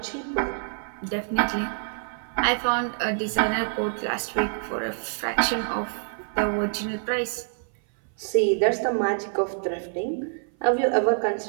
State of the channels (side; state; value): left; silent; 58 dB below the other